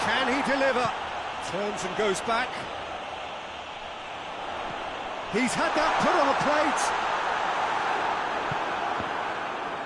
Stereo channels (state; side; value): identical; both; correlation 1.00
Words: Can he deliver? Turns and goes back. He's had that put on a